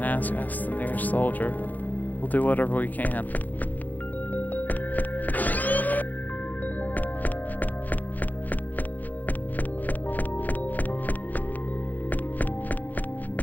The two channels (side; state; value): right; late; 0.082 ms